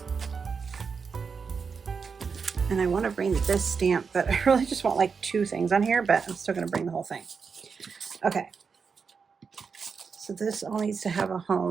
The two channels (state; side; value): quieter; left; 5.6 dB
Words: And I want to bring this stamp, but I really just want like 2 things on here, but I'm still going to bring the whole thing. Okay. So this all needs to have a